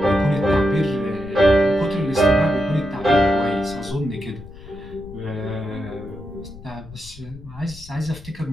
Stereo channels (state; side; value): noise; left; rumble, 17 dB below the sound